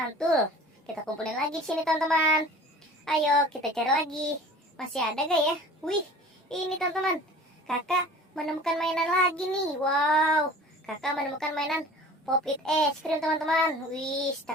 Kita kumpulin lagi di sini teman-teman. Ayo kita cari lagi. Masih ada gak ya? Wih, ini teman-teman. Kakak menemukan mainan lagi nih. Wow, kakak menemukan mainan Pop-It es krim teman-teman. Wih,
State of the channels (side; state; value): both; normal; correlation 0.43